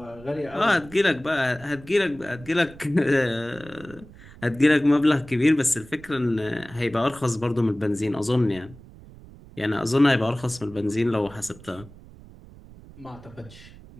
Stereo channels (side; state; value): right; noise; rumble, 20 dB below the sound